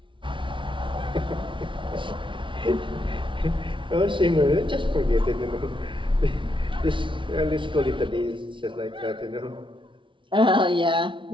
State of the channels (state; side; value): late; left; 0.24 ms